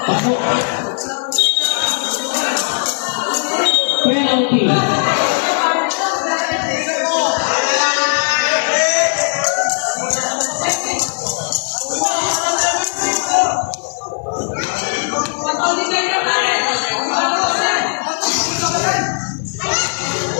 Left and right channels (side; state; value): right; silent; digital silence